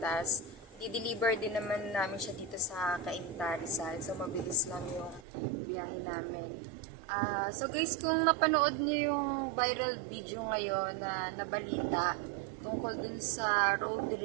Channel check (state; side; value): drops out; left; at 5.2 s